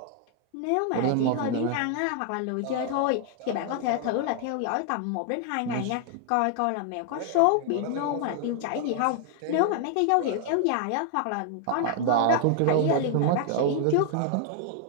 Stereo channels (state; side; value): different; both; correlation 0.00